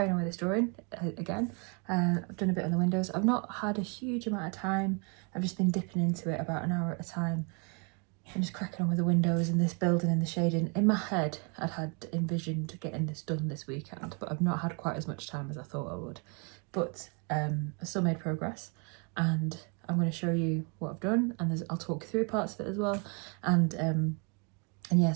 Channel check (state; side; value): quieter; left; 34.9 dB